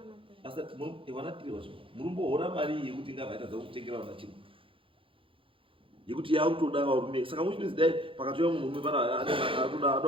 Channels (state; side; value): late; left; 0.25 ms